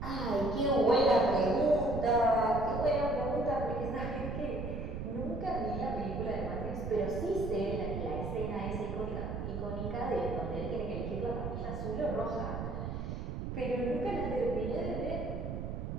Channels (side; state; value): right; noise; rumble, 5 dB below the sound